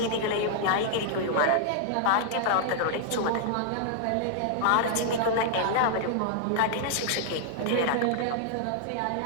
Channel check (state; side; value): different; both; correlation -0.01